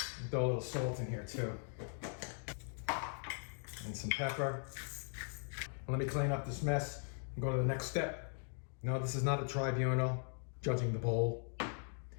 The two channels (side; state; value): right; silent; 51 dB below the other